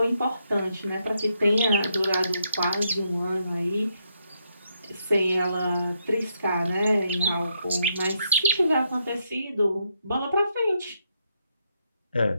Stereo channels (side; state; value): both; inverted; correlation -0.78